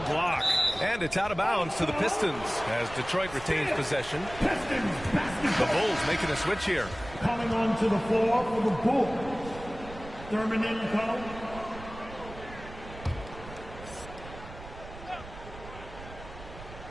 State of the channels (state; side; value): noise; right; rumble, 14 dB below the sound